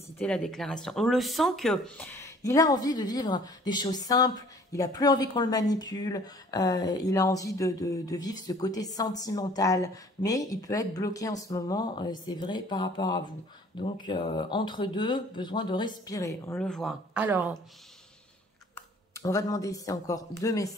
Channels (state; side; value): normal; both; correlation 0.54